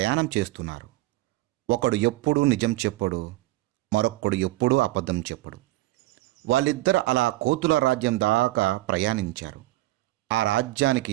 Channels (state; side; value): quieter; left; 18.2 dB